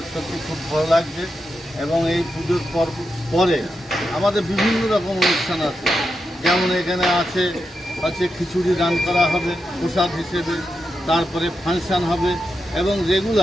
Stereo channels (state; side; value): normal; both; correlation 0.87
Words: সত্যি খুব ভালো লাগছে। এবং এই পুজোর পরে আমাদের বিভিন্ন রকম অনুষ্ঠান আছে, যেমন এখানে আছে খিচুড়ি দান করা হবে প্রসাদ হিসেবে, তারপরে ফাংশন হবে এবং